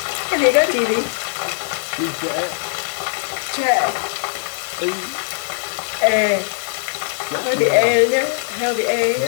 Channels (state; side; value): silent; right; 64 dB below the other